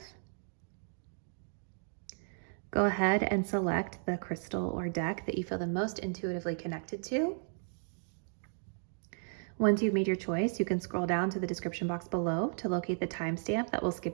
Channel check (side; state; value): left; silent; 55 dB below the other